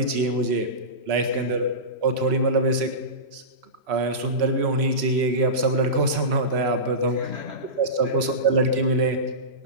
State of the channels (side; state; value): left; late; 3.0 ms